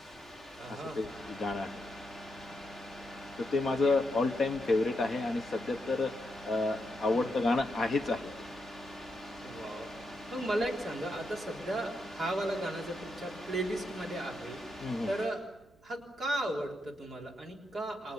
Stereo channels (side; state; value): right; noise; hum, 29 dB below the sound